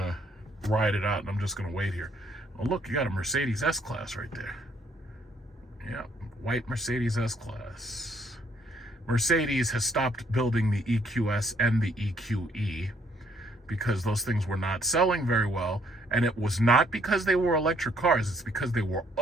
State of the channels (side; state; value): both; normal; correlation 0.67